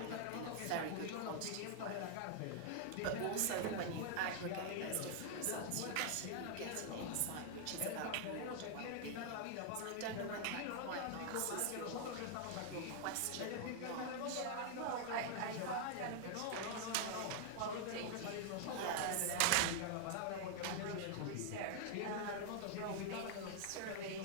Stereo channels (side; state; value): both; different; correlation 0.00